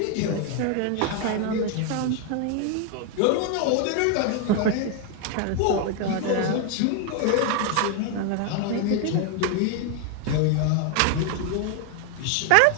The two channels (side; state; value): both; different; correlation 0.01